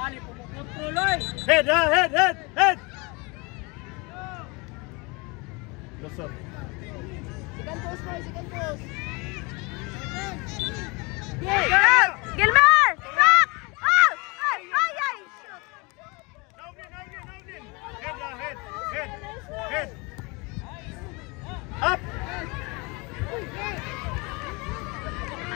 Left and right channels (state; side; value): quieter; right; 27.6 dB